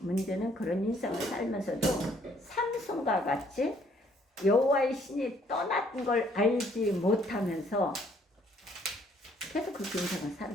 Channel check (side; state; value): both; normal; correlation 0.64